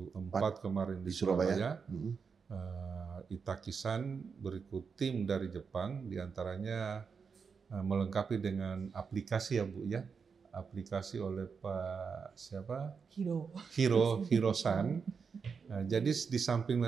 kemarin di Surabaya. Itakisan berikut tim dari Jepang, diantaranya melengkapi dengan aplikasi ya Bu ya, aplikasi oleh Pak siapa? Hiro-san. Jadi di samping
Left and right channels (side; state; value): left; quieter; 5.8 dB